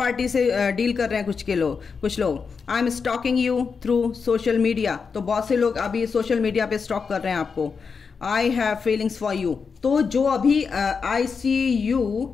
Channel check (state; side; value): quieter; right; 5.5 dB